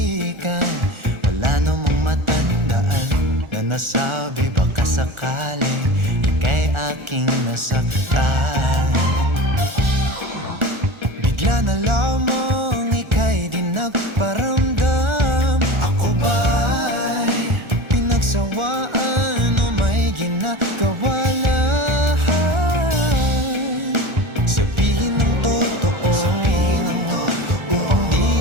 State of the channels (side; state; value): left; late; 1.4 ms